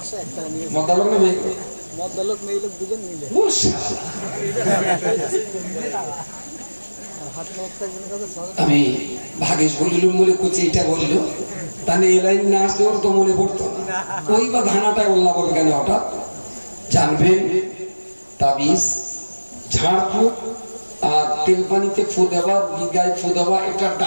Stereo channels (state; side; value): inverted; both; correlation -1.00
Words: টাকা নিয়েছে। মদ্দালোক না মেয়ে? মদ্দালোক মেয়ে লোক দুজন মিলে। আমি ভাগেশ বলিলুম বলে কুচি এটা বললো, তাহলে এই লাইন না আসলে ওর তো মনে পড়তো না। ওই বা ধানাটায় উল্লাহ বলবে কেন হঠাৎ? জানবেন তাবিজ ঝাড়ফুঁক আর তেল পানিতে ফু দেওয়া, গায়ে ফু দেওয়া, এটা